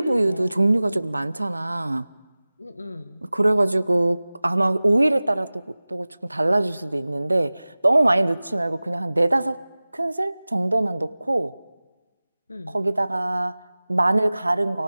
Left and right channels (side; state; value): both; inverted; correlation -0.98